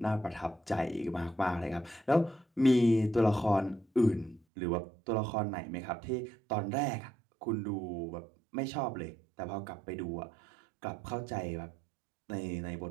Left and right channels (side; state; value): left; drops out; at 4.4 s